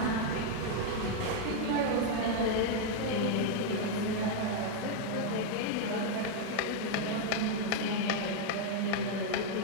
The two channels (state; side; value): different; both; correlation 0.00